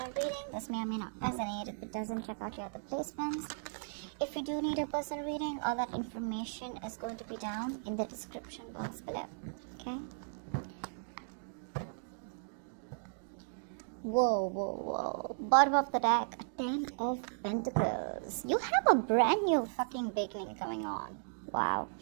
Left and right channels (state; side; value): silent; left; digital silence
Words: reading. This may or may not resonate. If it doesn't, check out your other placements. If you do need a personal reading, all that information is going to be down in the description box below. Okay? Whoa. Bottom of the deck, 10 of Pentacles. You have a brand new fucking beginning coming on. Wow.